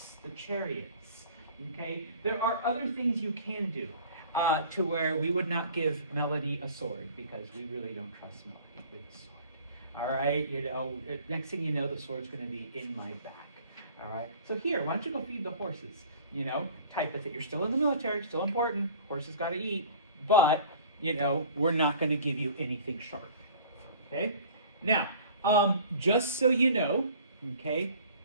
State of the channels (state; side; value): inverted; both; correlation -0.47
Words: the chariots, okay? There are other things you can do to where we would not give Melody a sword because we really don't trust Melody with a sword. All right? You know, next thing you know, the sword's going to be in my back. All right? So here, why don't you go feed the horses? you know, type of thing. You're still in the military, still important, horses got to eat, but, you know, we're not going to give you anything sharp. Okay? Now, just so you know, okay,